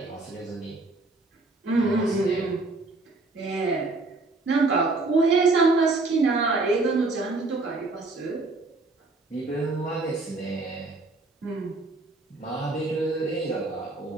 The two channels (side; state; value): left; quieter; 3.3 dB